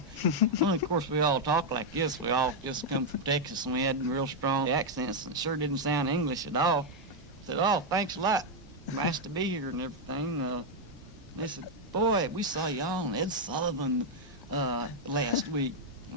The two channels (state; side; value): normal; both; correlation -0.01